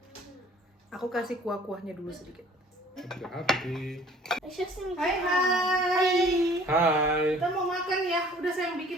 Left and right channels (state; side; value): normal; both; correlation 0.53